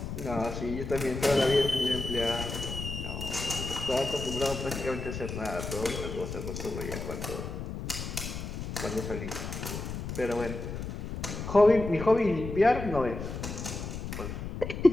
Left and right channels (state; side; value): noise; left; rumble, 6 dB below the sound